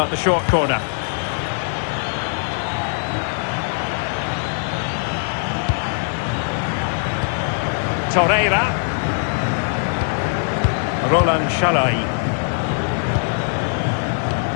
the short corner? Torreira. Roland Shalai.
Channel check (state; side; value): silent; right; 60 dB below the other